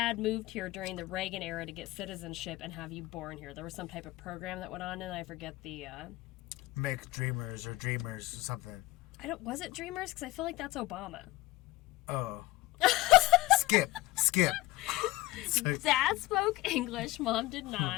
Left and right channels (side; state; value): right; quieter; 18.5 dB